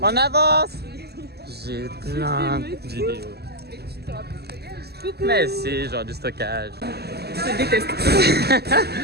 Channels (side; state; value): left; late; 0.47 ms